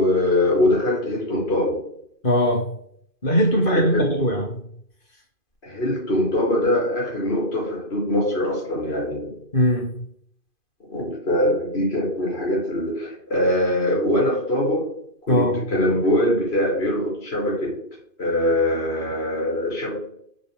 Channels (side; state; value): right; late; 2.5 ms